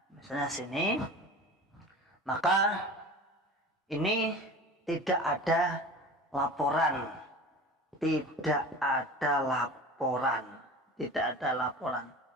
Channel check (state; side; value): normal; both; correlation 0.37